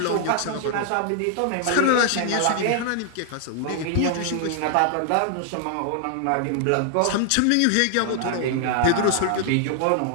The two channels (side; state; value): both; different; correlation 0.00